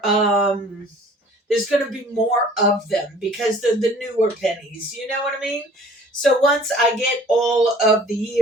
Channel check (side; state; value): both; normal; correlation 0.51